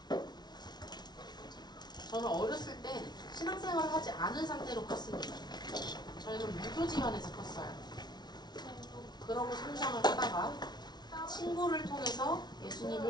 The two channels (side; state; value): right; late; 0.20 ms